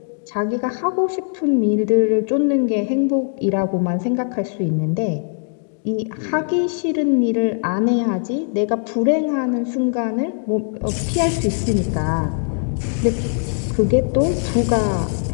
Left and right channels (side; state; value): right; silent; 58 dB below the other